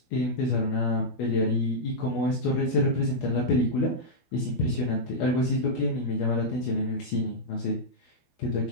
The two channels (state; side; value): late; right; 12 ms